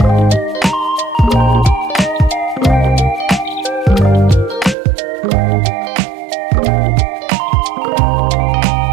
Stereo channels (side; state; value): left; drops out; at 4.8 s